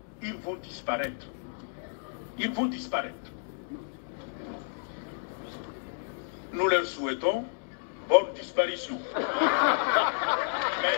ils vont disparaître. Ils vont disparaître. Nous leur souhaitons bonne disparition. Mais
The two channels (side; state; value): right; silent; digital silence